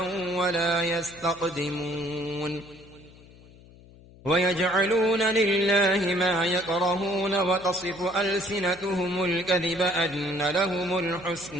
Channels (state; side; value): noise; left; hum, 23 dB below the sound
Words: ولا يستقدمون ويجعلون لله ما يكرهون وتصف ألسنتهم الكذب أن لهم